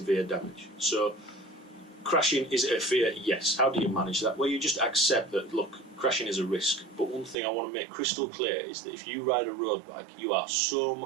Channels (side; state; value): left; drops out; at 7.4 s